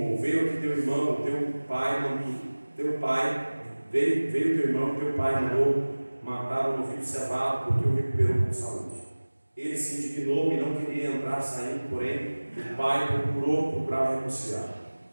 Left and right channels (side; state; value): both; inverted; correlation -1.00